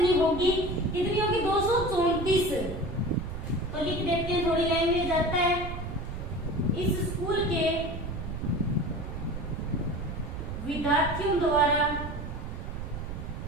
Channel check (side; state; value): right; noise; rumble, 6 dB below the sound